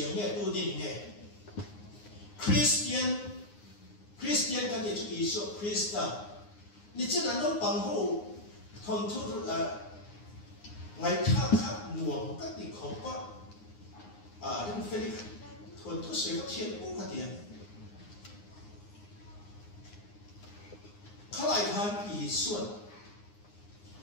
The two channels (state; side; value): late; right; 9.7 ms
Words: nghe tu din nghe Christian kan thì chữ Isu Christa ni chỉ là nó bằng hộ thôn thu là ngày khác nuông các địa không có đến phê thôn thu sẽ có thiên cũng có tiền khai lại han Isu